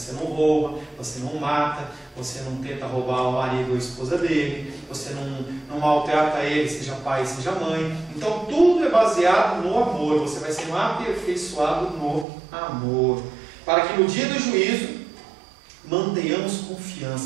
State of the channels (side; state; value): left; drops out; at 12.2 s